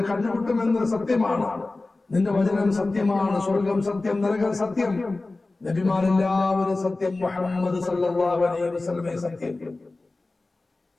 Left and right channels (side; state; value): right; quieter; 3.2 dB